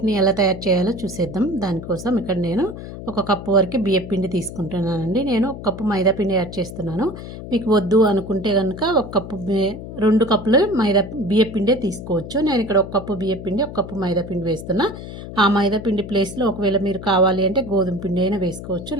ఎలా తయారు చేయాలో చూసేద్దాం. దానికోసం ఇక్కడ నేను ఒక కప్పు వరకు బియ్యం పిండి తీసుకుంటున్నానండి. నేను ఒక కప్పు మైదా పిండి యాడ్ చేస్తున్నాను. మీకు వద్దు అనుకుంటే కనుక ఒక కప్పు 2 కప్పులు బియ్యం పిండే తీసుకోవచ్చు. నేను ఇక్కడ ఒక కప్పు బియ్యం పిండి, ఒక కప్పు మైదా పిండి వేస్తున్నా. ఆ మైదా పిండి ప్లేస్లో ఒకవేళ మీరు కావాలి అంటే గోధుమ పిండి అయినా వేసుకోవచ్చు,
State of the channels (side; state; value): left; noise; hum, 11 dB below the sound